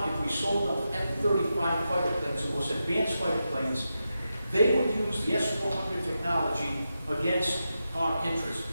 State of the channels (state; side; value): inverted; both; correlation -0.89